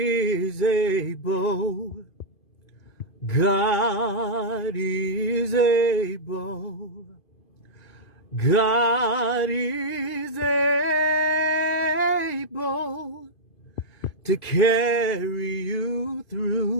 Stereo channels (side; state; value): right; late; 2.5 ms